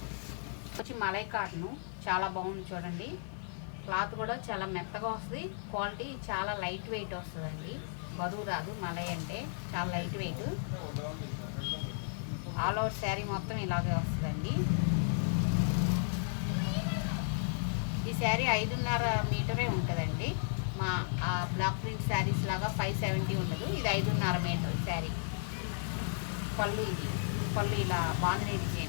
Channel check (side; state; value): right; silent; digital silence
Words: వచ్చి మలై కాటను చాలా బాగుంది. చూడండి, క్లాత్ కూడా చాలా మెత్తగా వస్తుంది. క్వాలిటీ చాలా లైట్ వెయిట్ వస్తుందండి, బరువు రాదు. మలై అంటే చాలా light weight. All over sari మొత్తం ఇలాగే వస్తుందండి. ఈ శారీ 5.5 మీటరే ఉంటుందండి. మా బ్లాక్ ప్రింట్ శారీస్ లాగా 570 ఉండదు. ఇది 5.5 మీటర్ శారీ. పళ్ళు ఇది. పళ్ళు ఇలా బాందిని